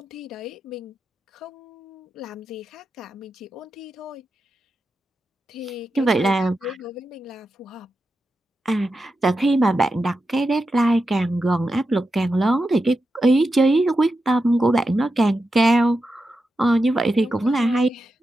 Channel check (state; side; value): normal; both; correlation 0.89